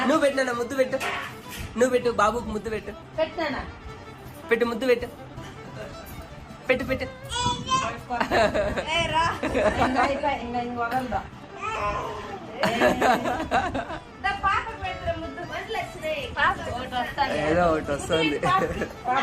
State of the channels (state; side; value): identical; both; correlation 1.00